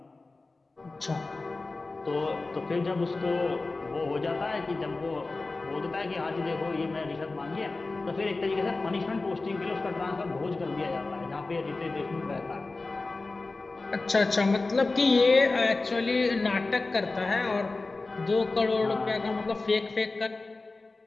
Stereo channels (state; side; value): quieter; right; 3.5 dB